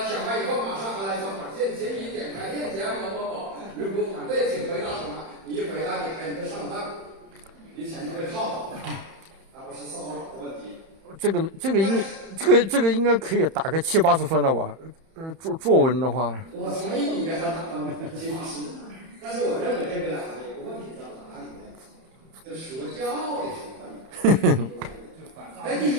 完以后马上还来一条短信，请你点开链接某某某。如果反对，请回答什么？你一回答点开你就上当，你钱就被套了，而不是骚扰的问题。这个应该可以打个70-80分了吧？作文的话，我同意你给他打分70-80。但是我认为这个呢，有个问题在哪里呢？就说教的成分。哎，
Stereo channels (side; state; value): left; late; 31 ms